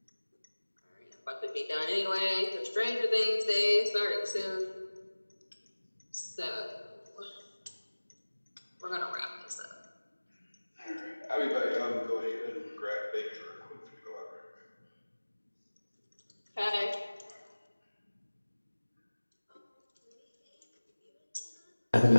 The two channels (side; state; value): both; inverted; correlation -1.00